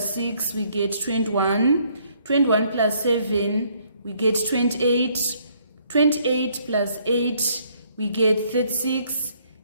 6, we get 21. 21 plus 7, we get 28. 28 plus 8, we get 36.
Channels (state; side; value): inverted; both; correlation -0.67